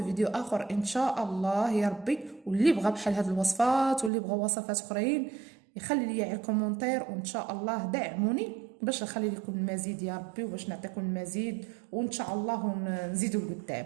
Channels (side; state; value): left; drops out; at 4.1 s